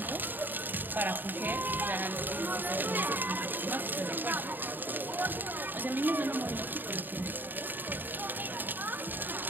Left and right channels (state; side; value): late; left; 0.091 ms